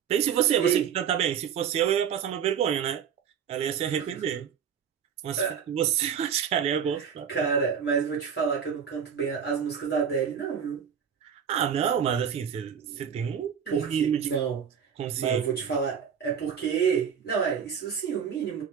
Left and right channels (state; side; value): quieter; left; 7.7 dB